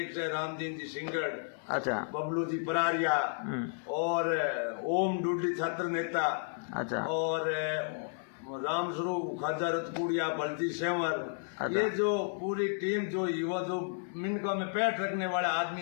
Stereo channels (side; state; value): right; silent; 56 dB below the other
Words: है रामदीन जी सिंगड़, अच्छा, बबलू जी परारिया, और ओम डुडली छात्र नेता, अच्छा, और रामस्वरूप खाजा रतपुड़िया, बलजी सेवर, ये जो पूरी टीम, जो युवा, जो मिनकों में पैठ रखने वाले